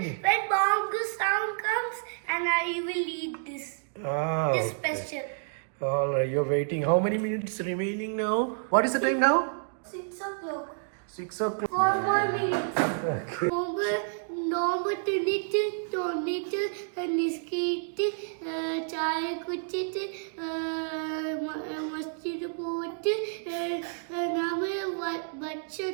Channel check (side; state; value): left; silent; digital silence